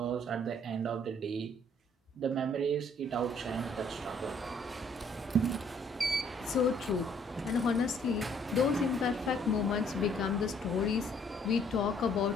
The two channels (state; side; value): normal; both; correlation 0.63